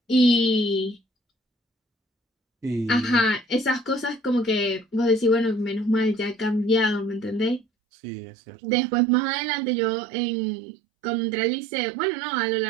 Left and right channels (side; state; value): left; drops out; at 7.7 s